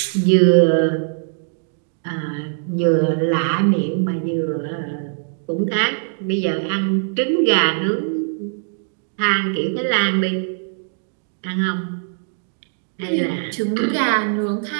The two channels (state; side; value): silent; left; digital silence